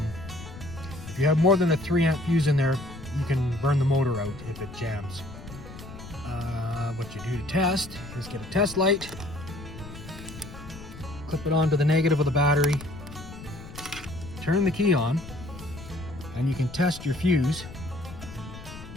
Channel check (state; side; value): noise; left; rumble, 14 dB below the sound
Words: If you have more than a 3 amp fuse in there, you can burn the motor out if it jams. What you do to test is get a test light, clip it onto the negative of the battery, turn the key on, and you can test your fuse